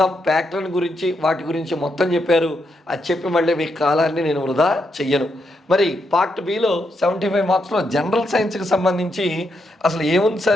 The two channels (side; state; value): both; normal; correlation 0.81